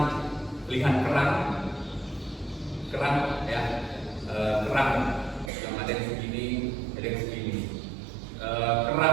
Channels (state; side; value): drops out; left; at 5.5 s